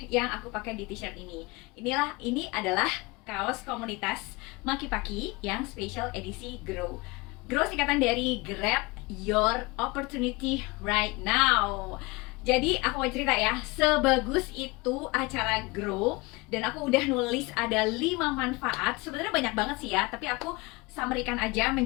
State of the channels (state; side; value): quieter; right; 24.9 dB